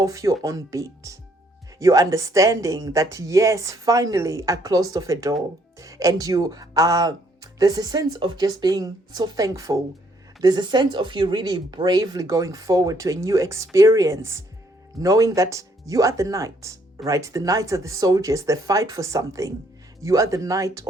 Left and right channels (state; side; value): normal; both; correlation 0.68